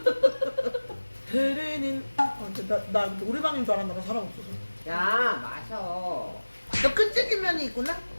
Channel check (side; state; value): both; inverted; correlation -1.00